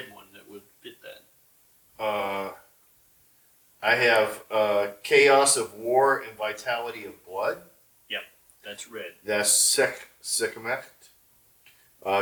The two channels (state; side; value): identical; both; correlation 1.00